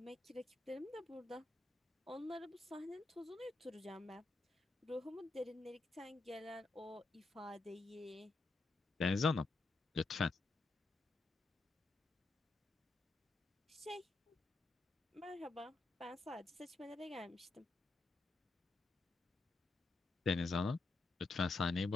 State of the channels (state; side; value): quieter; right; 3.4 dB